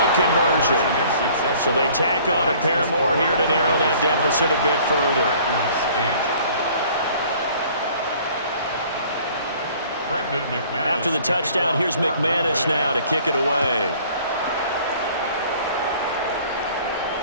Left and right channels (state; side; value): inverted; both; correlation -0.53